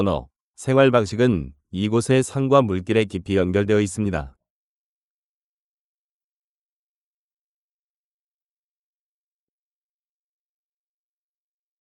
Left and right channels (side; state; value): both; identical; correlation 1.00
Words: 생활 방식은 이곳의 산과 물길에 깊이 연결되어 있습니다.